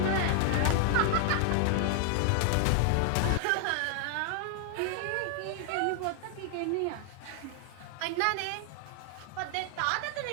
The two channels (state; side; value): different; both; correlation 0.00